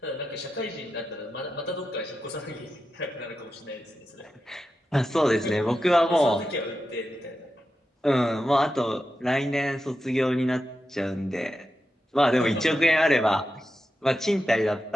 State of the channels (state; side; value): normal; both; correlation 0.90